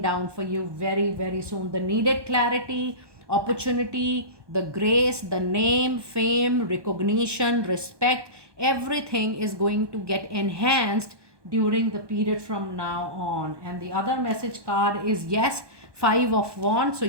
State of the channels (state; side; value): late; left; 1.2 ms